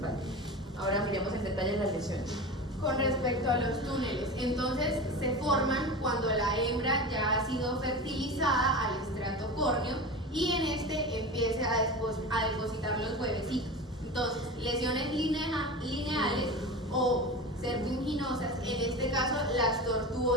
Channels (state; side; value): normal; both; correlation 0.28